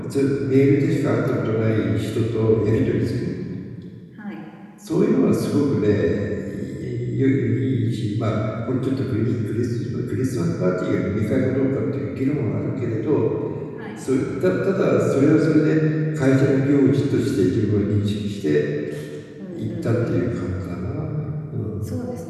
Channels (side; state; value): both; identical; correlation 1.00